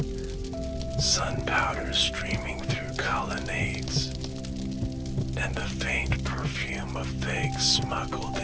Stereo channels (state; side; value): identical; both; correlation 1.00